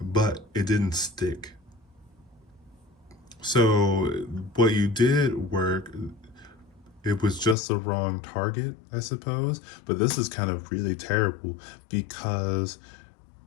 but it didn't stick. So what you did work, it was just the wrong target, I suppose. But this is kind of really terrible because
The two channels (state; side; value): drops out; right; at 7.6 s